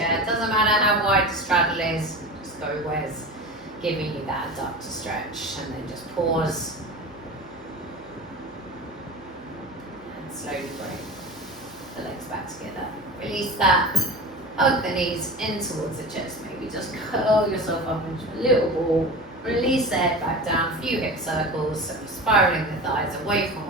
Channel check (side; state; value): right; noise; hum, 29 dB below the sound